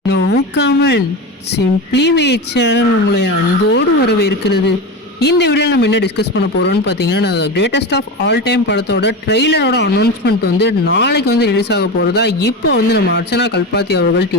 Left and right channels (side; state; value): both; normal; correlation 0.23